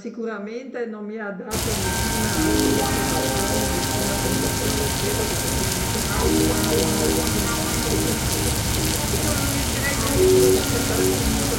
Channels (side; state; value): both; identical; correlation 1.00